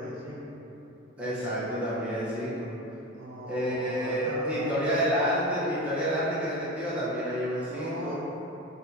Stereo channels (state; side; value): normal; both; correlation 0.24